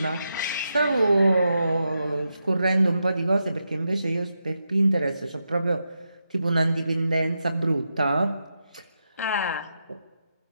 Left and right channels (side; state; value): both; inverted; correlation -0.86